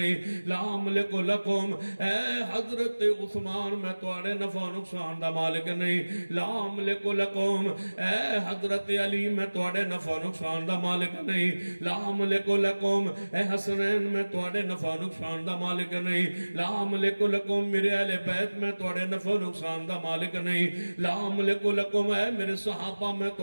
لا أملك لکم۔ اے حضرت عثمان میں توڑے نفع نقصان دا مالک نہیں، لا أملك لکم۔ اے حضرت علی میں توڑے نفع نقصان دا مالک نہیں، لا أملك لکم۔ اے حسنین میں توڑے نفع نقصان دا مالک نہیں، لا أملك لکم۔ میرے اہل بیت میں توڑے نفع نقصان دا مالک نہیں، لا أملك لکم۔ اے میرے صحابہ میں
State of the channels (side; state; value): both; inverted; correlation -1.00